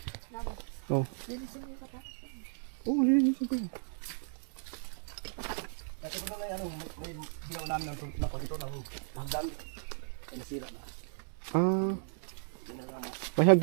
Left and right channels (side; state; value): left; silent; digital silence